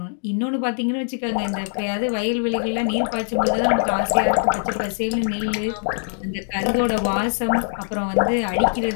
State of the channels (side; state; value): right; silent; digital silence